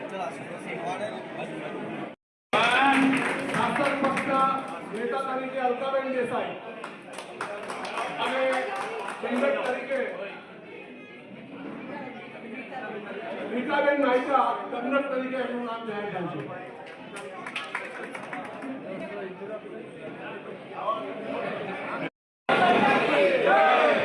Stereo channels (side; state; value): both; identical; correlation 1.00